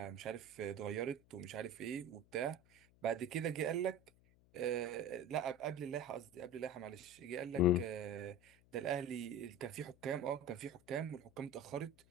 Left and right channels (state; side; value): noise; left; hum, 28 dB below the sound